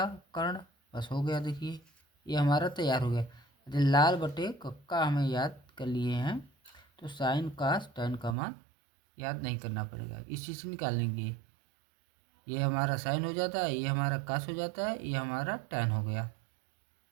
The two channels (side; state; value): left; drops out; at 8.3 s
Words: कर्ण। बस हो गया। देखिए ये हमारा तैयार हो गया। यदि लाल बटे कक्का हमें याद कर लिए हैं, तो साइन कास टैन का मान याद नहीं करना पड़ेगा, इस चीज़ से निकाल लेंगे। ये हमारा साइन हो जाता है, ये हमारा कास हो जाता है, ये हमारा टैन हो गया।